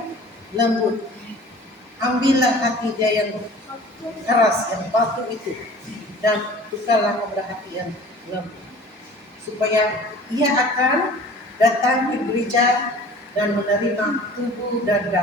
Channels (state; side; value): normal; both; correlation 0.45